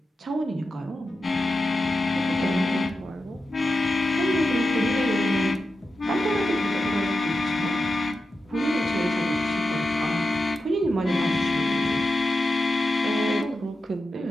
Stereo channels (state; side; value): normal; both; correlation 0.90